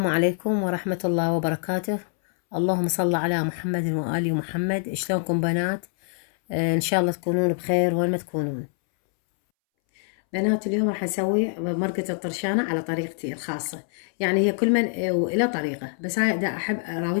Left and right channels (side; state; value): right; silent; 62 dB below the other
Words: عليكم ورحمة الله وبركاته. اللهم صل على محمد وآل محمد. شلونكم بنات؟ إن شاء الله تكونون بخير وين ما تكونون. بنات اليوم راح نسوي مرقة الطرشانة على طريقتي الخاصة، يعني هي كل من إلى طريقة، بس هاي دا أحب